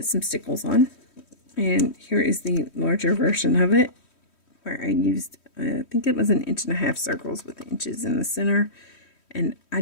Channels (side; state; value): right; late; 3.1 ms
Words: some stickles on. And here is the larger version of it, where I used, I think it was 1.5 inch circles with inches in the center. And I